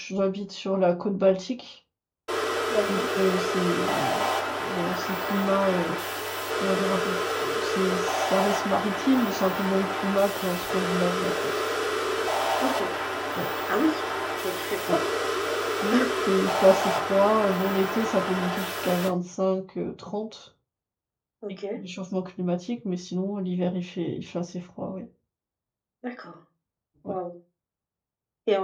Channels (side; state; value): both; identical; correlation 1.00